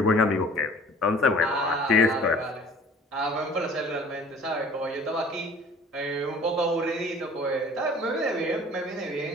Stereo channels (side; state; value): both; normal; correlation 0.49